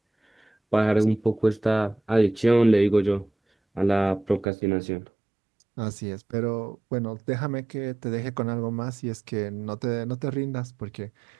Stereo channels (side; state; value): left; drops out; at 4.5 s